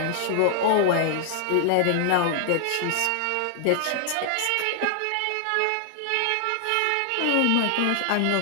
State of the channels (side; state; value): both; different; correlation 0.00